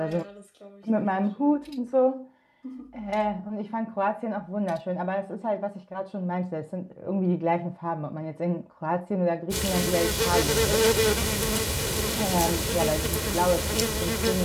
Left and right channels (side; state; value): both; identical; correlation 1.00